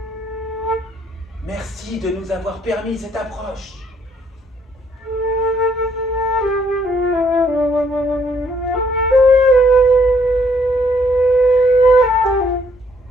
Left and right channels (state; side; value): normal; both; correlation 0.67